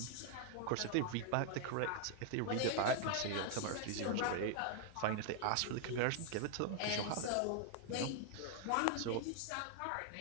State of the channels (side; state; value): both; different; correlation 0.00